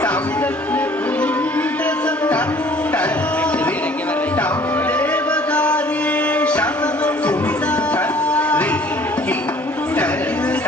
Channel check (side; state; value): both; normal; correlation 0.54